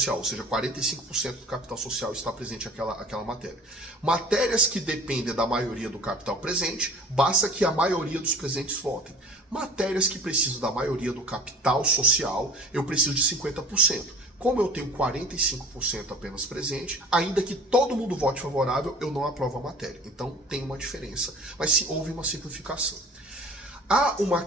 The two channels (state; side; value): normal; both; correlation 0.44